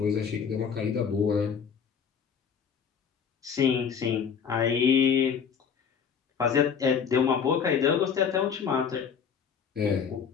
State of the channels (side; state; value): right; quieter; 7.0 dB